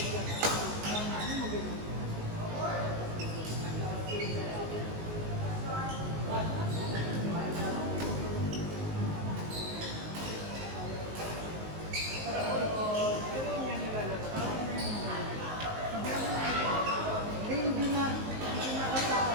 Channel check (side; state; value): left; late; 19 ms